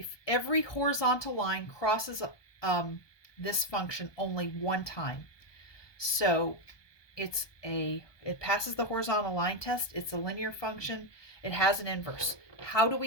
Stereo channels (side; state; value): right; late; 1.2 ms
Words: every horizontal line crosses this function only one time. So it passes the horizontal line test. It's a linear function. It has an inverse. How do